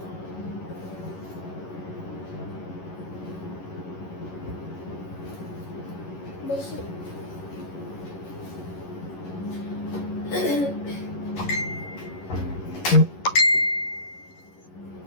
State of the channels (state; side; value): late; right; 11 ms